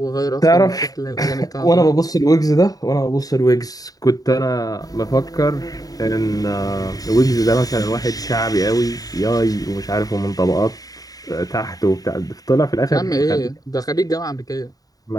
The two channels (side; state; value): right; late; 0.18 ms